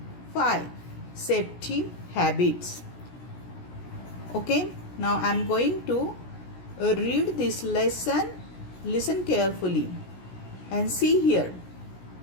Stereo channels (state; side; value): late; right; 17 ms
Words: 5, safety habits. Okay, now I am going to read this lesson. Listen carefully and see here.